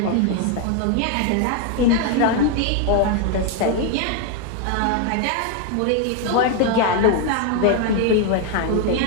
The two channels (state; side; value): different; both; correlation 0.01